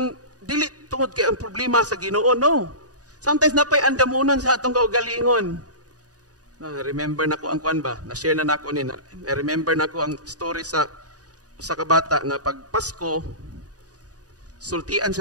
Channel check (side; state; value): left; late; 0.68 ms